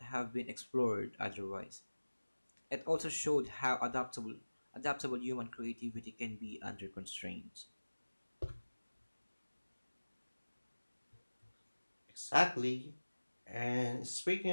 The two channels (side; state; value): both; inverted; correlation -1.00